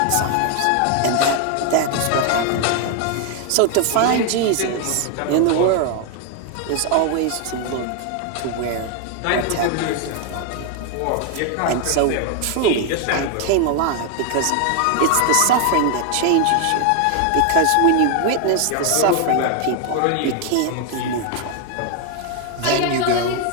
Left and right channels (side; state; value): both; different; correlation 0.01